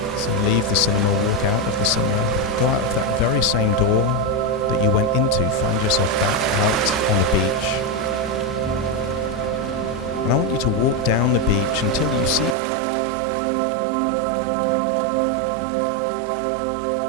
So leave the cinema, walk out of the cinema, go out of that very same door that you went into, find yourself back out on the beach. And I want you to walk down the beach until you see someone just like you, fast asleep on a red blanket, and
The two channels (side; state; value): left; drops out; at 12.6 s